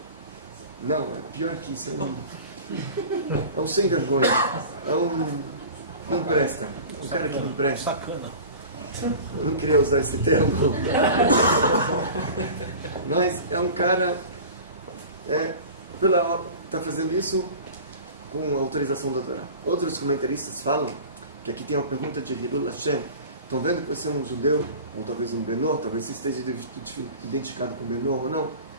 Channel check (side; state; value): both; inverted; correlation -0.38